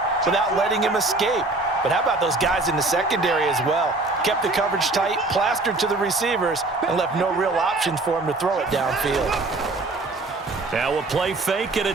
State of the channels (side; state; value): left; quieter; 3.1 dB